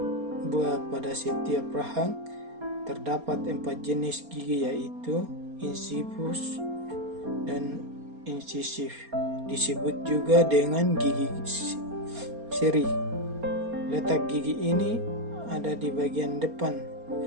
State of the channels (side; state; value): left; late; 4.3 ms